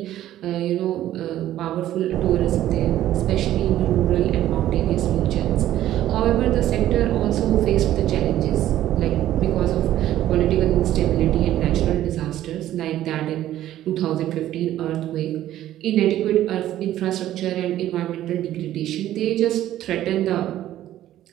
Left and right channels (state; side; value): quieter; left; 13.1 dB